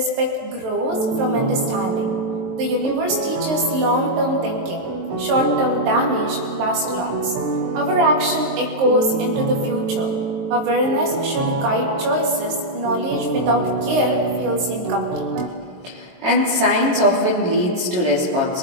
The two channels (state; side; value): late; left; 23 ms